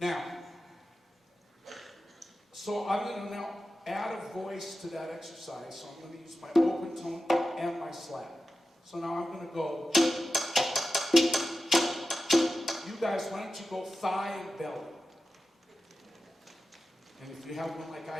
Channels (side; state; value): both; normal; correlation 0.92